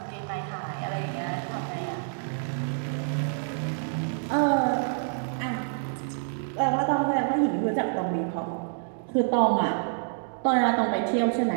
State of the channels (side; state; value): left; silent; digital silence